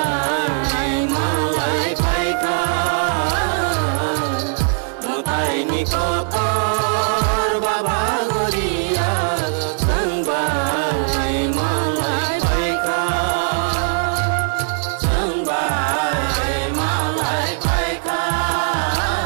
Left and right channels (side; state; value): left; silent; 66 dB below the other